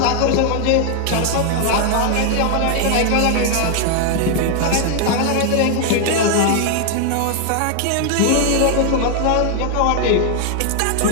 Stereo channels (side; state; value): both; different; correlation 0.00